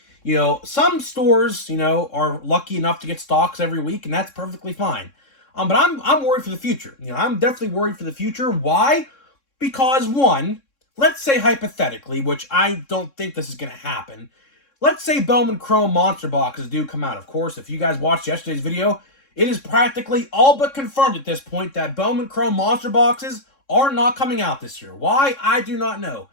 Some stores, are lucky enough to get stocks every week, and that's perfectly fine. But I'm worried for the future. I'm definitely worried for the future. Why? Because, one, let's say hypothetically, which I don't think this is going to happen, let's say Bowman Chrome Monster Boxes do come out. Of course, if you guys watched yesterday's video, it is practically all but confirmed at this point that Bowman Chrome Monster Boxes are not coming out this year. Why? I do not know.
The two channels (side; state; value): right; late; 3.6 ms